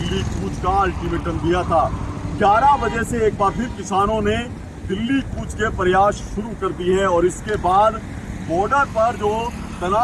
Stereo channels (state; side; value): identical; both; correlation 1.00